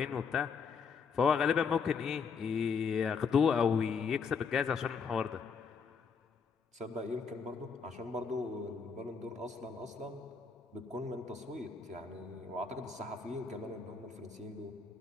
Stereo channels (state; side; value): quieter; right; 5.7 dB